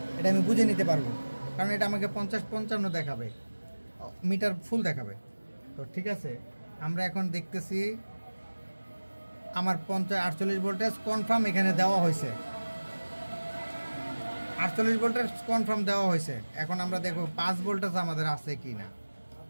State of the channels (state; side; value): inverted; both; correlation -1.00